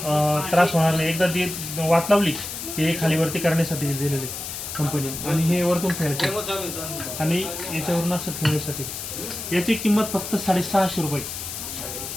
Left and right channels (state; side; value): noise; left; hiss, 7 dB below the sound